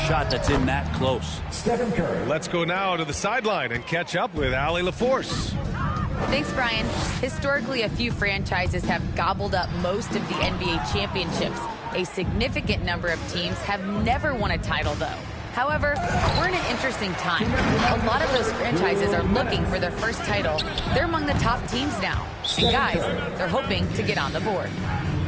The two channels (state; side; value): identical; both; correlation 1.00